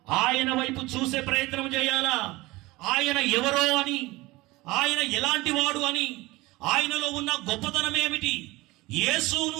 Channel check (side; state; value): left; quieter; 20.7 dB